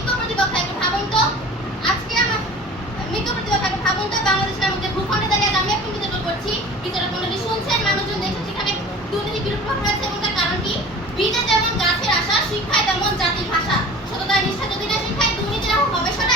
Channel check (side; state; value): both; normal; correlation 0.41